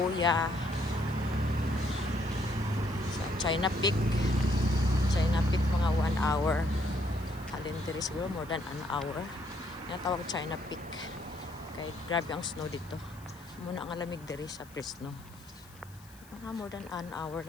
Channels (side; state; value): left; noise; hiss, 24 dB below the sound